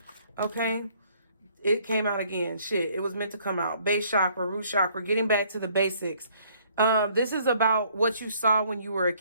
Okay. It came out again. Shit, it was meant to come out. Base chakra, root chakra, getting back to the basics. This is about what you saw when you were a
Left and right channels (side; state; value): both; inverted; correlation -0.63